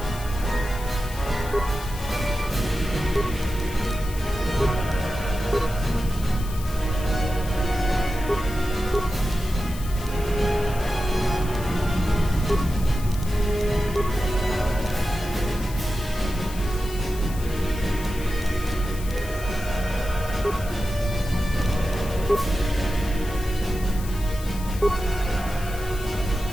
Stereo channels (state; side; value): noise; left; hiss, 15 dB below the sound